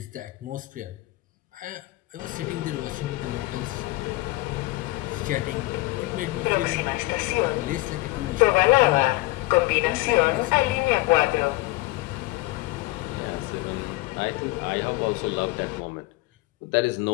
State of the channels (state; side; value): quieter; right; 20.3 dB